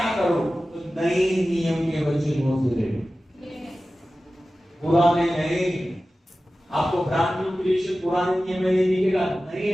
करो? तो नए नियम के वचनों से, पुराने नहीं। आपको ब्रांड न्यू क्रिएशन पुराने नियम में नहीं दिखेगा,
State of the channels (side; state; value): both; normal; correlation 0.95